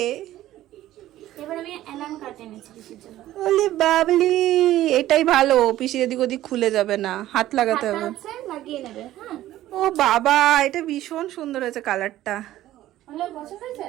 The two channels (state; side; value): quieter; left; 14.2 dB